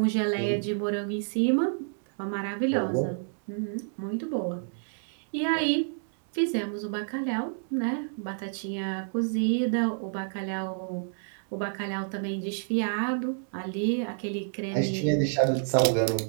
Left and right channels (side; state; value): left; silent; digital silence